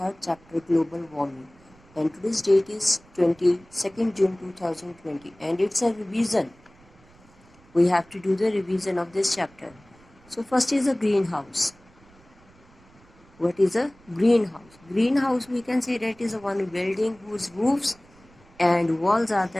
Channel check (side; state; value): right; noise; rumble, 27 dB below the sound